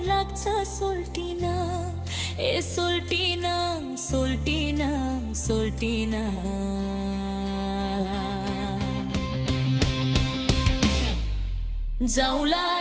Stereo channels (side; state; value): both; identical; correlation 1.00